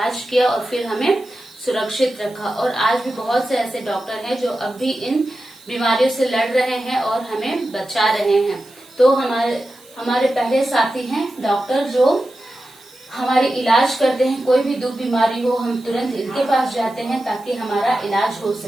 किया और फिर हमें सुरक्षित रखा। और आज भी बहुत से ऐसे डॉक्टर हैं जो अब भी इन बीमारियों से लड़ रहे हैं और हमें बचा रहे हैं। तो हमारे पहले साथी हैं डॉक्टर, जो हमारे इलाज करते हैं। कोई भी दुख बीमारी हो, हम तुरंत इनके पास जाते हैं ताकि हमारा इलाज हो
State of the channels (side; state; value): right; noise; hiss, 26 dB below the sound